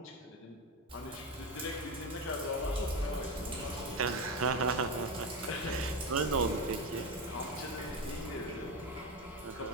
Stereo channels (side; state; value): both; normal; correlation 0.17